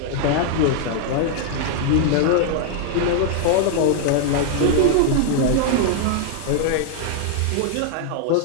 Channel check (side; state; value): both; different; correlation 0.00